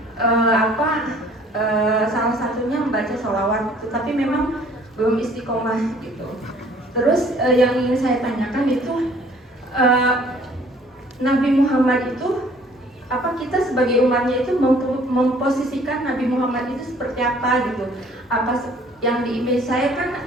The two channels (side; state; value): both; normal; correlation 0.56